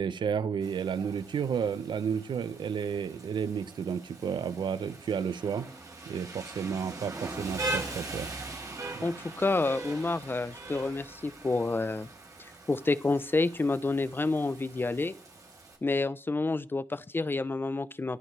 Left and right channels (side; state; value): both; normal; correlation 0.76